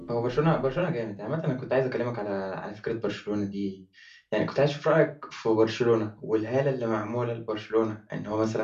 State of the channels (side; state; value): both; identical; correlation 1.00